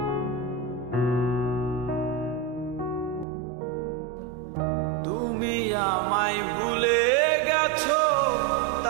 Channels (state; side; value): drops out; left; at 3.2 s